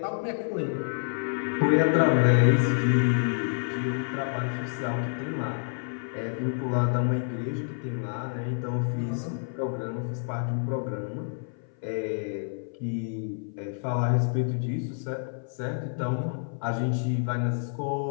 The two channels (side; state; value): right; silent; 57 dB below the other